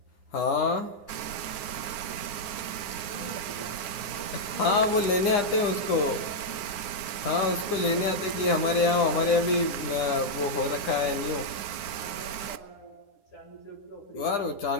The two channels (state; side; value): late; right; 9.8 ms